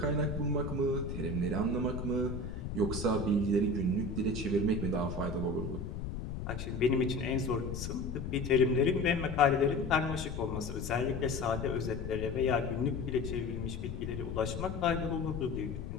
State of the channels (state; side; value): noise; left; rumble, 6 dB below the sound